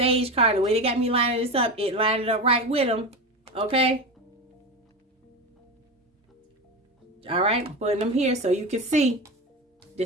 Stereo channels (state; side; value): normal; both; correlation 0.22